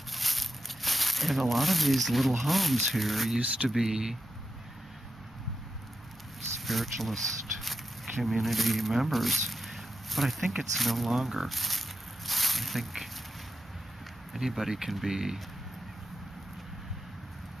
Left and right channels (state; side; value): normal; both; correlation 0.89